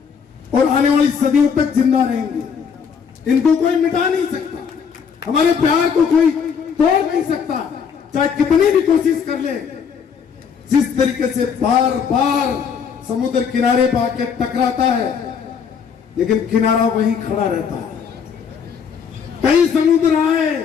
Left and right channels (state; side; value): quieter; right; 6.7 dB